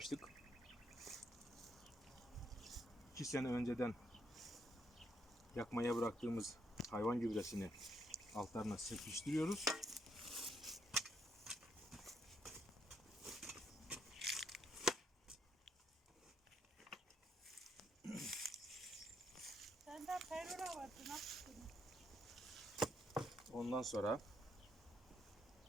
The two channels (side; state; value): both; normal; correlation 0.76